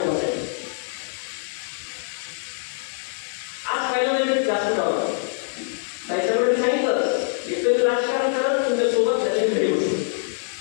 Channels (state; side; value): silent; right; digital silence